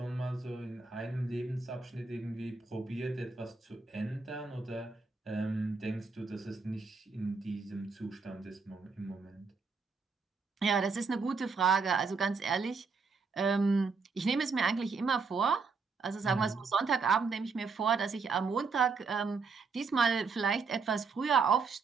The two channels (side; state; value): left; quieter; 4.7 dB